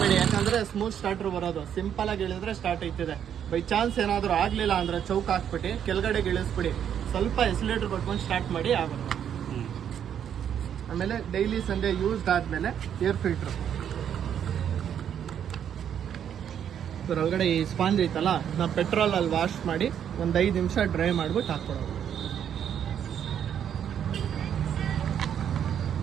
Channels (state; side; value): quieter; left; 9.0 dB